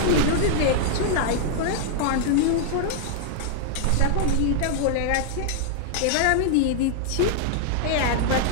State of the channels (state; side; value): different; both; correlation -0.01